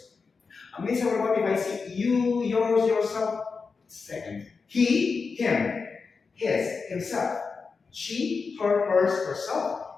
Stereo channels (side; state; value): right; quieter; 4.9 dB